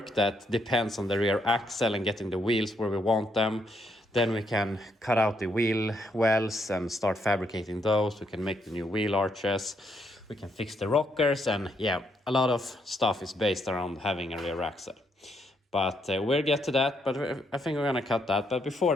that depends on the rear axle and getting the wheels where we want them. Then we can cut out the wheel wells and start fabricating those. We can make the new wheel arches. We can fix the rockers, and yeah, a lot of stuff is based around having a rear axle. But we'll get to that, but I think we're gonna cut that. But before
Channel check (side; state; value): both; normal; correlation 0.75